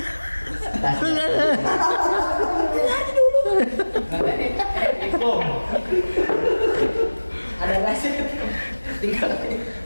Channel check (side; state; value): both; inverted; correlation -1.00